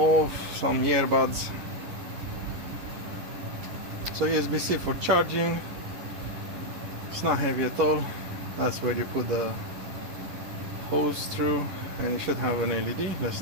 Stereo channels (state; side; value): late; left; 11 ms